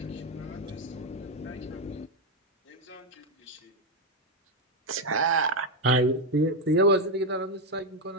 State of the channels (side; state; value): both; normal; correlation 0.05